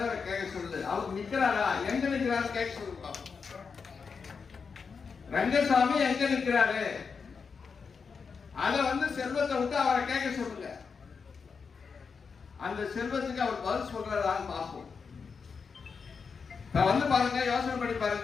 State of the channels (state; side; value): quieter; right; 5.5 dB